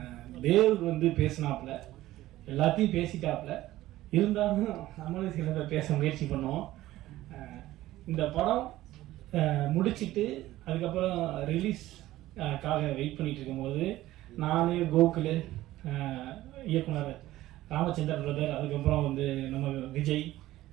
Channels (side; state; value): left; quieter; 15.7 dB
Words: தேவ் வந்து பேசினாப்புல, எல்லாத்தையும் பேசிட்டாப்புல, இருந்தாலும் நம்மளும் சில பேச முயற்சி பண்ணுவோம். இந்த படம் முடிச்சுட்டு அதுக்கப்புறம் ரிலீஸ்க்காக வெயிட் பண்ணிட்டு இருக்கும்போது நான், கோகுல், இயக்குனர் ராமச்சந்திரன் பிரதர், அதுக்கப்புறம் வந்து நம்ம விஜய்,